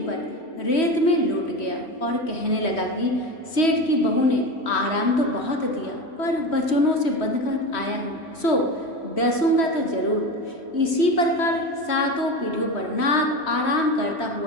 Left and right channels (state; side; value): late; right; 3.1 ms